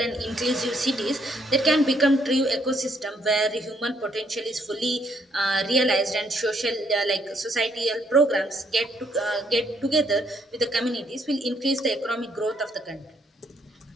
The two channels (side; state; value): both; normal; correlation 0.70